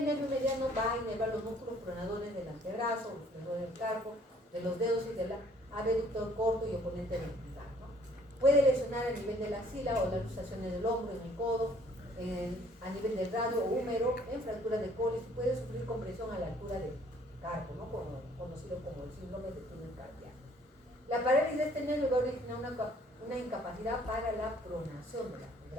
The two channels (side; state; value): both; normal; correlation 0.60